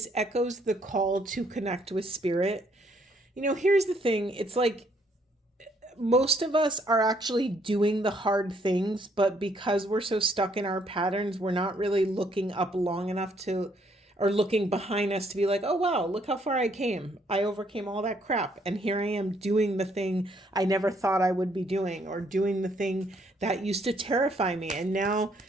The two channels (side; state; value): both; normal; correlation 0.68